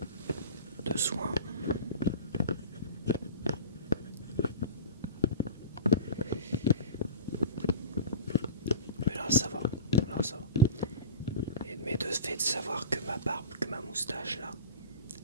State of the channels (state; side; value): inverted; both; correlation -0.33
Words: soins, mais là ça va. Mais de fait de savoir que ma barbe, que ma moustache là,